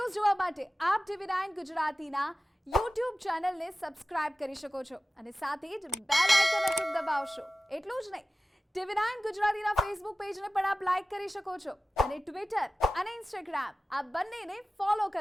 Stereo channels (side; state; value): both; normal; correlation 0.96